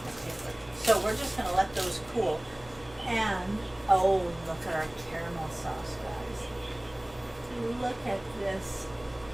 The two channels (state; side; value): noise; left; hum, 22 dB below the sound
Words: paper. So we're just going to let those cool. And, oh, look at our caramel sauce, guys. Look at this.